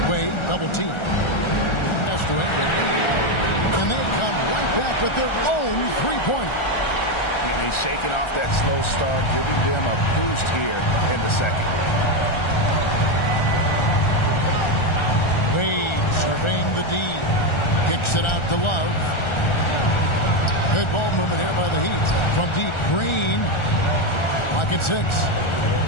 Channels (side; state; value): right; late; 1.4 ms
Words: Wade double team. Pass to Ingram. And they come right back with their own three-pointer. And he's shaking off that slow start, giving them a boost here in the second. Wade surveying the D. Kicks it out to Love. Good ball movement here by the Heat. From deep, Green. Pocket 6.